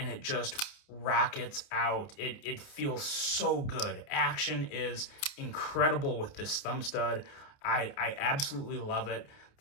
it just rockets out. It feels so good. Action is incredible with this thumb stud. I absolutely love it.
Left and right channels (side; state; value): right; late; 29 ms